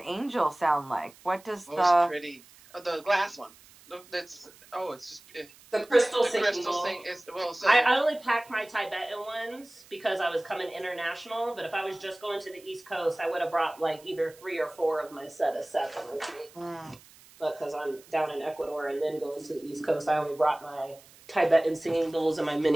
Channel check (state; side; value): noise; right; hiss, 24 dB below the sound